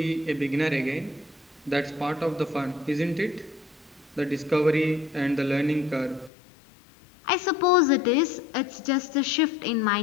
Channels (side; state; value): right; drops out; at 6.3 s